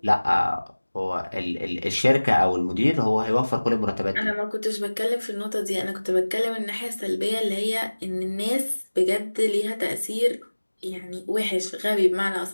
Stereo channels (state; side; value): inverted; both; correlation -1.00